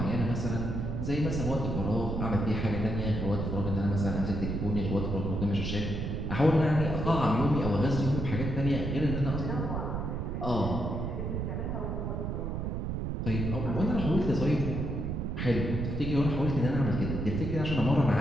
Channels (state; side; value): noise; right; rumble, 2 dB below the sound